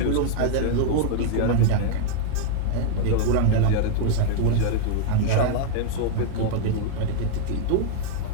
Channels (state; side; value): different; both; correlation -0.01